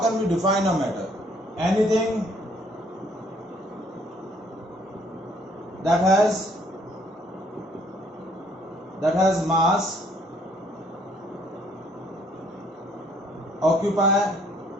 we define a matter? Anything that has mass, occupy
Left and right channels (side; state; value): both; normal; correlation 0.64